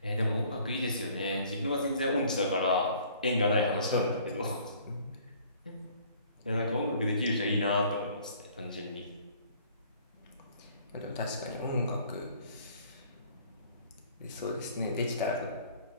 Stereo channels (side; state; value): both; inverted; correlation -0.56